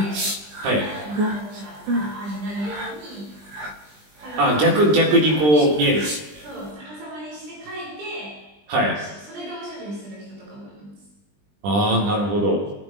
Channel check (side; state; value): left; late; 20 ms